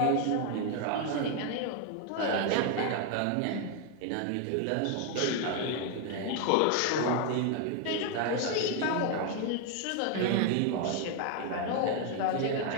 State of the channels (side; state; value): both; different; correlation 0.01